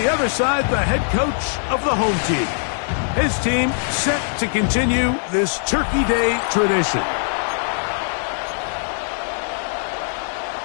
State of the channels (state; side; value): silent; right; digital silence